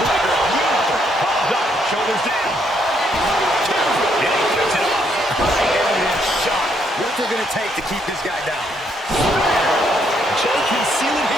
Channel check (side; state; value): both; normal; correlation 0.73